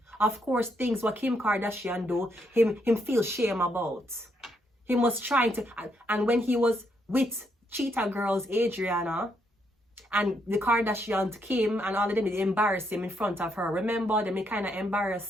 Of course, things what Kim Kardashian do, him feel shame about. He was trying to, and when he was with Cheetah Girls, Adriana, and the Kardashians Kim and all of them, they embarrassed him in front of her. Remember, they kind of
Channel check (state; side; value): normal; both; correlation 0.76